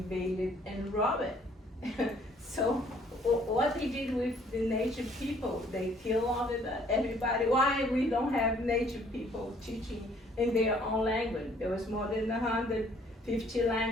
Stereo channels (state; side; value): normal; both; correlation 0.61